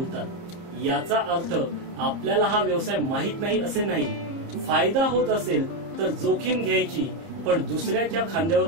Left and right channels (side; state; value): left; late; 29 ms